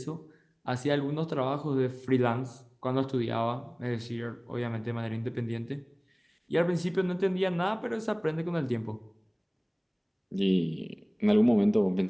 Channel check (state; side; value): identical; both; correlation 1.00